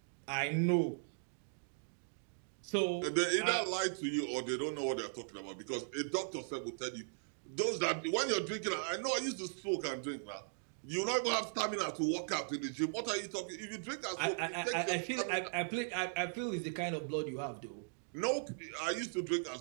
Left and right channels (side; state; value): left; silent; digital silence